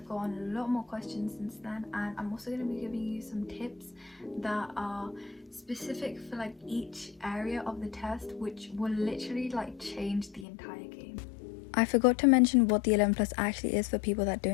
gotten a lot more questions since then, and I'm also going to be giving you some tips that are specific for like each area of the test, which will literally like change the entire game. I forgot to mention what the 11 plus actually is for people that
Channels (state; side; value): drops out; right; at 10.5 s